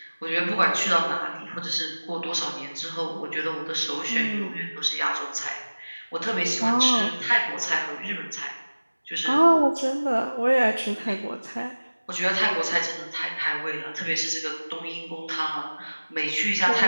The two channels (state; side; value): inverted; both; correlation -1.00